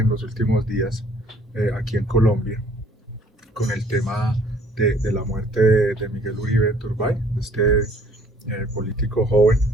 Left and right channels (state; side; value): normal; both; correlation 0.58